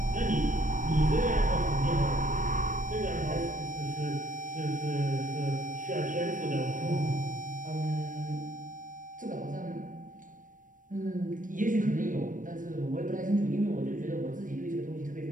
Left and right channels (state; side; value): late; left; 0.38 ms